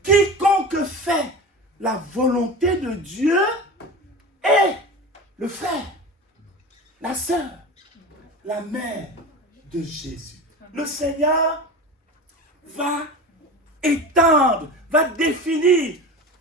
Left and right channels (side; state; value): both; normal; correlation 0.30